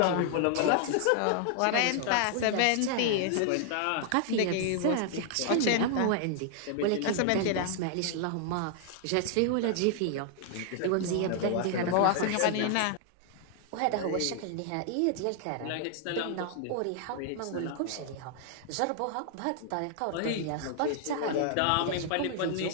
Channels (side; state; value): both; different; correlation 0.00